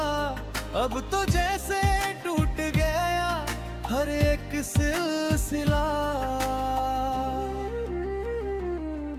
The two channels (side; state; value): both; identical; correlation 1.00